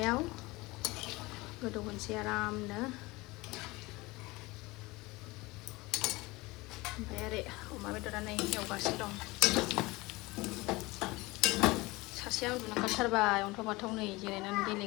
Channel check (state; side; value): quieter; right; 22.2 dB